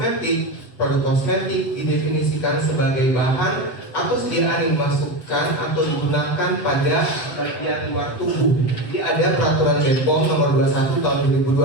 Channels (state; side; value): late; right; 7.5 ms